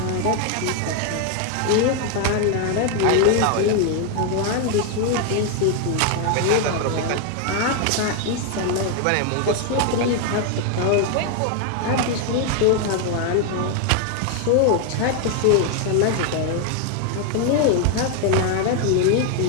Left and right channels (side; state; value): both; different; correlation 0.01